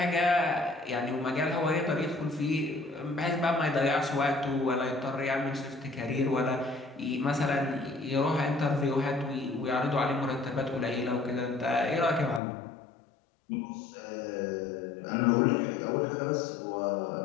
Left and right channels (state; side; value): drops out; right; at 12.4 s